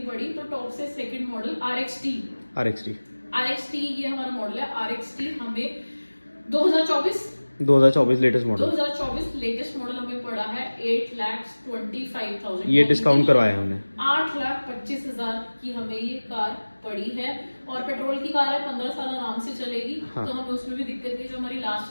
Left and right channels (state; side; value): inverted; both; correlation -1.00